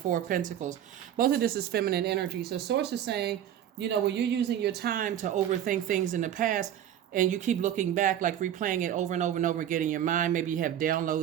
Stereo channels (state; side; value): quieter; left; 10.6 dB